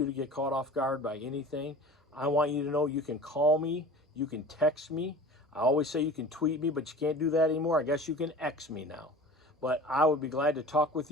to get caught off guard by anything. I want you to know you can call me, you can text me. I always say you can tweet me, but you can't do that anymore. I guess you can X me now. But I would be glad to talk with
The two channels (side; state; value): both; normal; correlation 0.40